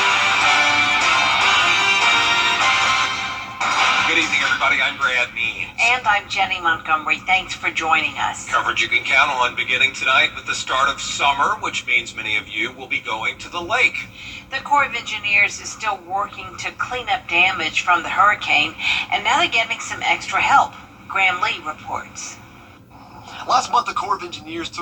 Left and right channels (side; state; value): both; identical; correlation 1.00